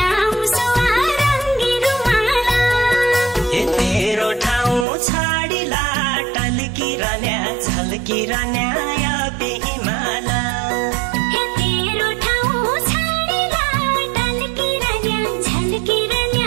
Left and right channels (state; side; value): drops out; left; at 4.9 s